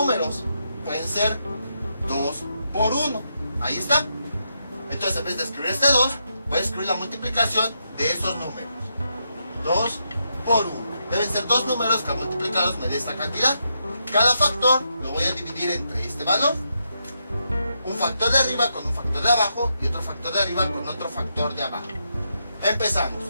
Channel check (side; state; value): both; inverted; correlation -0.82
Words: Pueden ser 2 por 1. Ahí está. Entonces, en vez de escribir este 2, voy a escribir la multiplicación de esos números. 2 por 1. Deben ser dos números que multiplicados me dé esta cantidad. Cada factor lo voy a dividir entre este valor. Un factor de arriba con un factor de abajo y otro factor de arriba con otro factor de abajo. Empezamos.